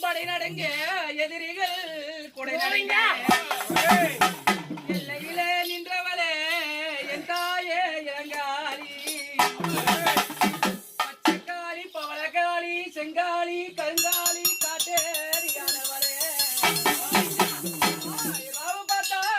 படை நடங்க எதிரிகள் கொடை நடங்க எல்லையிலே நின்றவளே என் தாயே இளங்காலி பச்சைக்காளி பவளக்காளி செங்காளி கருங்காளி காட்டேரியானவளே ராவு பார்த்தா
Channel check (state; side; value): identical; both; correlation 1.00